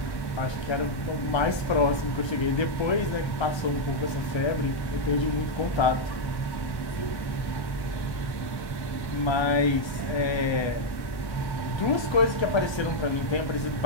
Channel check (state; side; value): late; right; 1.1 ms